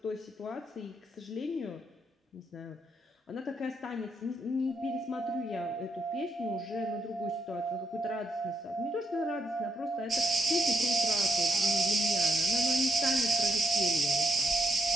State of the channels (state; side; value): normal; both; correlation 0.78